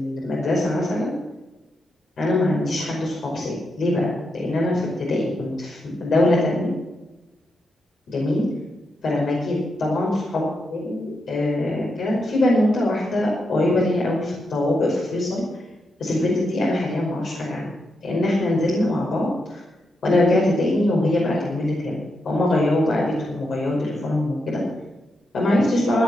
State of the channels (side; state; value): both; normal; correlation 0.84